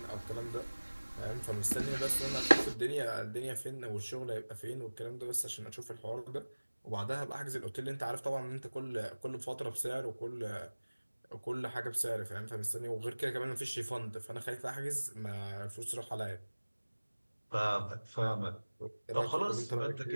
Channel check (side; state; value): both; inverted; correlation -1.00